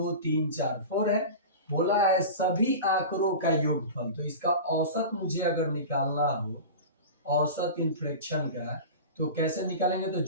3 4 4 है, बोला है सभी आंकड़ों का योगफल। तो इसका औसत मुझे अगर निकालना हो, औसत इन फ्रैक्शन का, तो कैसे निकालेंगे, तो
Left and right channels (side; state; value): both; inverted; correlation -0.30